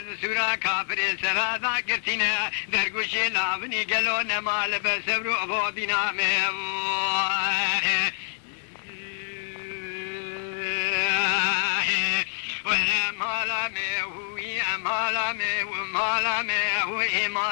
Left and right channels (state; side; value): silent; right; digital silence